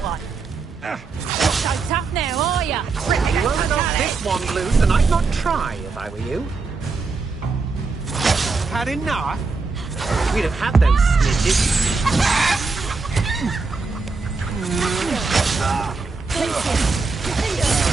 one! Not so tough now, are ya? You won't knock this one loose, and I'd not try if I were you. Had enough? We'd have had those snitches.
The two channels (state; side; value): quieter; left; 4.2 dB